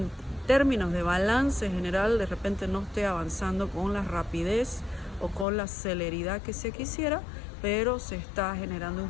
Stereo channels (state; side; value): drops out; right; at 5.5 s